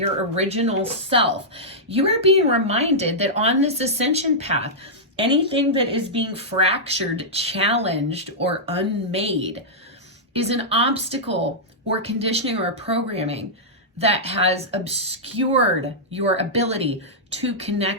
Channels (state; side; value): normal; both; correlation -0.11